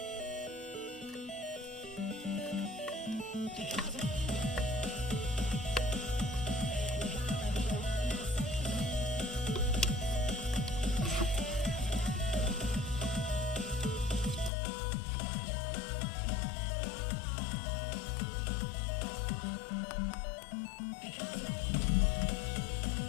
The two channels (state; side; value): drops out; right; at 14.5 s